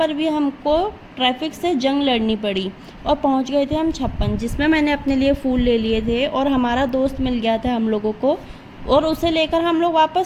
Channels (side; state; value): both; identical; correlation 1.00